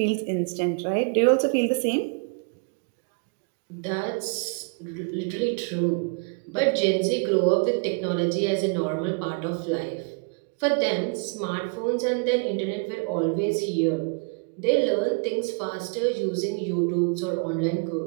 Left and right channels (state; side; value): quieter; left; 35.8 dB